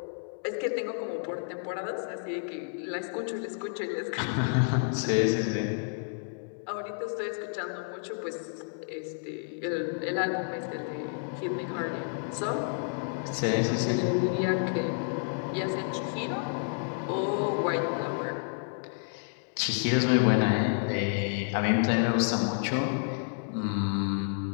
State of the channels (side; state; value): right; silent; digital silence